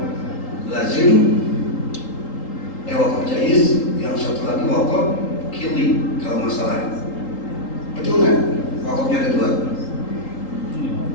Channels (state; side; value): late; right; 3.8 ms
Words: jaizin, wakaf jaiz, yang satu lagi wakaf kili kalau masalah. Betul nggak? Wakafnya ada dua.